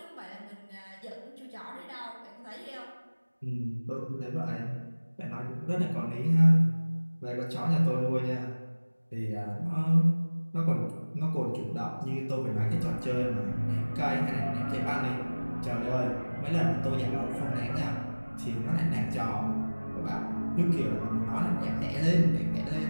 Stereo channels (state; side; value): inverted; both; correlation -1.00